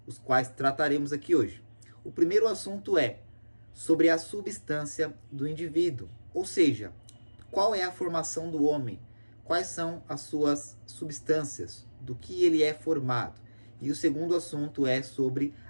os quais trataremos aqui hoje. O primeiro assunto é sobre a substância do indivíduo, ou seja, qual é a formação do homem, quais são as suas substâncias, do que ele é formado. E o segundo assunto é sobre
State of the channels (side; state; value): both; inverted; correlation -1.00